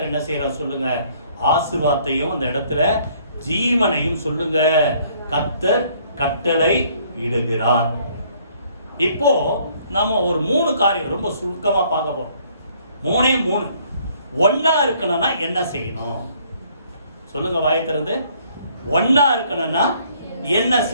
என்ன செய்யறார் சொல்லுங்க? ஆசீர்வாதத்தையும் அந்த இடத்துல ஜீவனையும் சொல்லுங்க கர்த்தர் கட்டளை இடுகிறார். இப்போ நம்ம ஒரு 3 காரியம் ரொம்ப சுருக்கமா பார்க்க போறோம். 3 ஒன்னா இருக்கணும்னா என்ன செய்யணும் சொல்லுங்க? வாயை திறந்து. ஒன்னா இருக்கணும்னா என்ன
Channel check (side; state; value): both; inverted; correlation -0.62